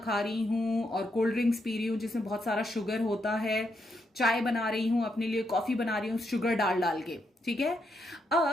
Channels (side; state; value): both; normal; correlation 0.80